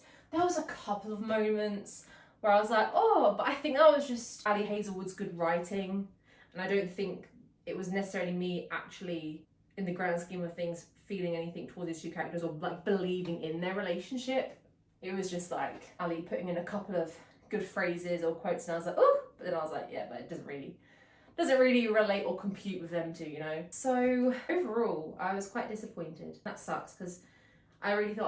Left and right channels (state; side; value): identical; both; correlation 1.00